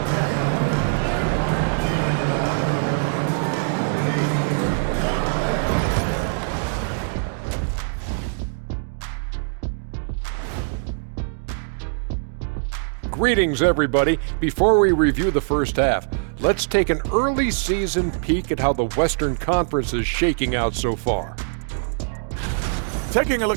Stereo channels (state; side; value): silent; left; digital silence